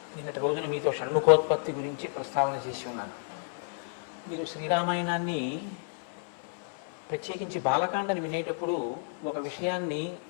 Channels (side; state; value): right; silent; 56 dB below the other